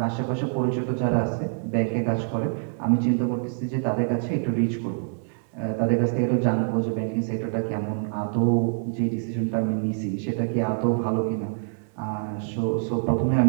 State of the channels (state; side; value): silent; left; digital silence